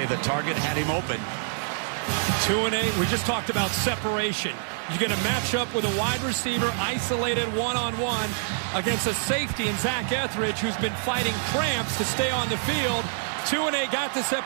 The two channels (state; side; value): silent; left; digital silence